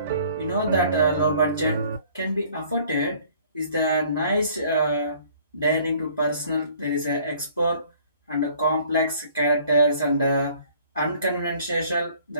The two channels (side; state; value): both; inverted; correlation -0.56